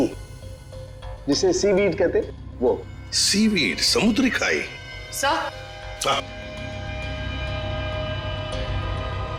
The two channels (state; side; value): identical; both; correlation 1.00